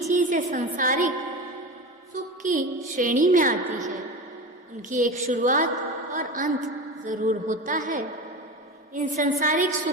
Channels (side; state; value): both; normal; correlation 0.27